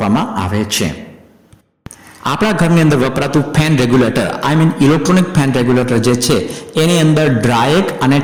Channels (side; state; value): both; identical; correlation 1.00